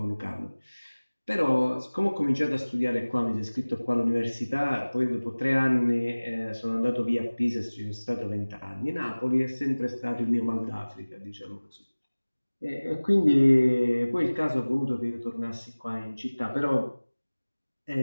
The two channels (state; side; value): inverted; both; correlation -1.00